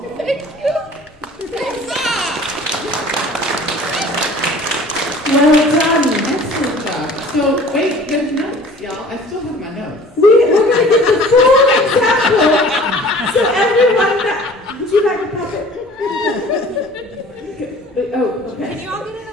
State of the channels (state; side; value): normal; both; correlation 0.47